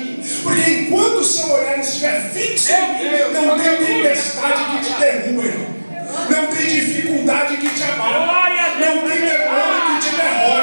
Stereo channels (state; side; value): inverted; both; correlation -1.00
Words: Porque enquanto o seu olhar estiver fixo em mim, não tem tempestade que te derruba, irmão. Não tem dificuldade que te abala. Não tem demônio que te